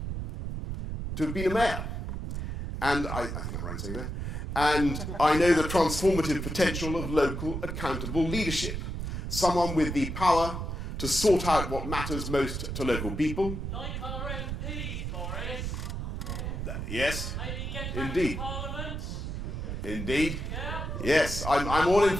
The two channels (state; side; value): noise; right; rumble, 4 dB below the sound